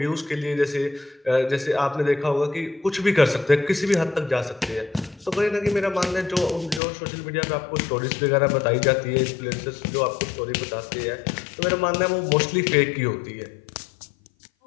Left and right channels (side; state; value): right; drops out; at 6.8 s